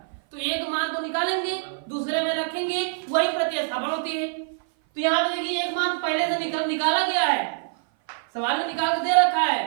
तो एक मान को निकालेंगे दूसरे में रखेंगे, वही प्रतिस्थापन होती है। तो यहाँ पे देखिए एक मान पहले से निकाला गया है, सवाल में निकाल के दे रखा है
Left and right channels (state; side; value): silent; left; 57 dB below the other